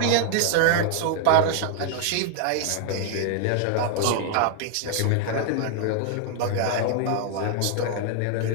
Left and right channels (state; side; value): different; both; correlation 0.00